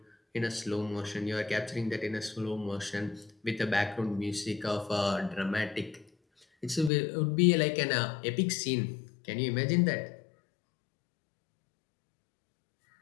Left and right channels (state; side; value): drops out; right; at 6.9 s